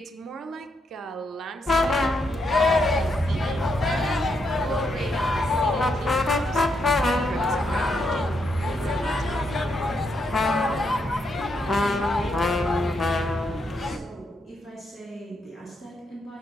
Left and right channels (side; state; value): both; normal; correlation 0.79